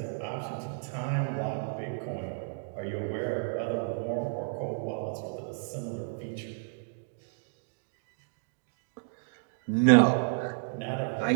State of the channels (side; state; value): left; silent; digital silence